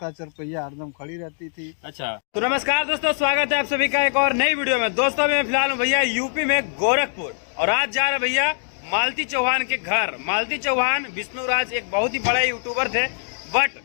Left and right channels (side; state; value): right; silent; digital silence